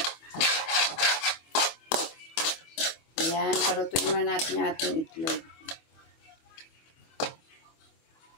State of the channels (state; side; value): late; right; 25 ms